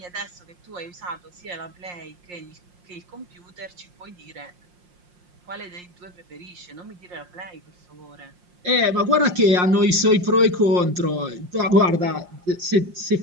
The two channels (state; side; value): late; left; 5.6 ms